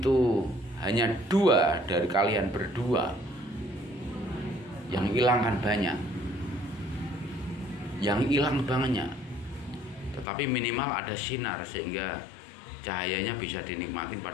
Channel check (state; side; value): drops out; right; at 10.2 s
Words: hanya dua dari kalian berdua, yang hilang kan banyak. Yang hilang banyak. Tetapi minimal ada sinar sehingga cahayanya bisa dinikmatin